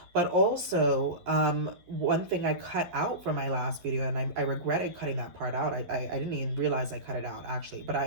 But also, one thing I cut out from my last video, and I regretted cutting that part out. I didn't even realize I cut it out, actually. But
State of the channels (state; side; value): late; left; 11 ms